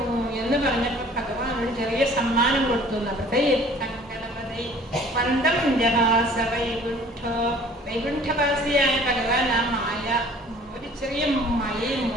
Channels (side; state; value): both; normal; correlation 0.51